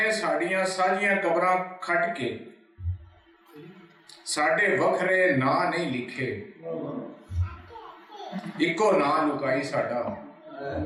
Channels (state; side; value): identical; both; correlation 1.00